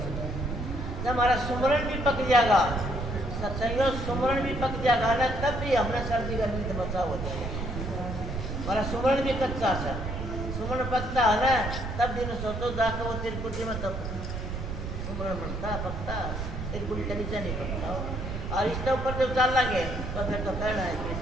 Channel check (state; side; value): noise; right; rumble, 5 dB below the sound